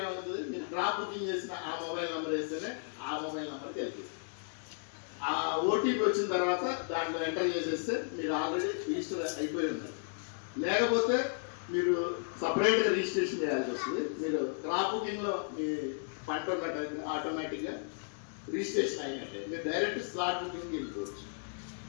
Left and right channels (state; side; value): silent; right; digital silence